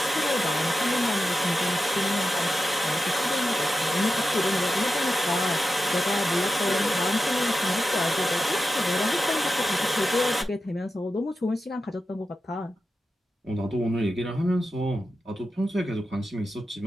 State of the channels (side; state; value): both; normal; correlation 0.91